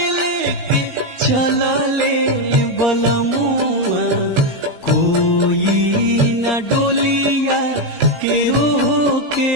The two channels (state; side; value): late; left; 17 ms